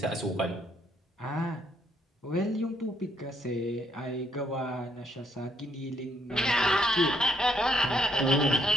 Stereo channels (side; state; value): both; normal; correlation 0.70